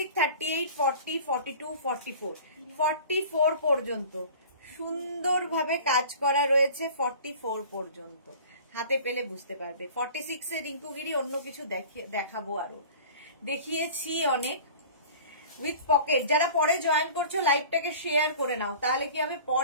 38, 40, 42, 44, 44 পর্যন্ত সুন্দরভাবে কাজ করা রয়েছে। 44 পর্যন্ত হাতে পেলে বুঝতে পারবে। 46 এর রিঙ্কুগিরি অন্য কিছু দেখাবো, আরো দেখিয়েছি অনেক। With pocket. যারা পরে জয়েন করছো লাইভটাকে শেয়ার করে নাও, তাহলে কি হবে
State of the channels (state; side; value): inverted; both; correlation -0.42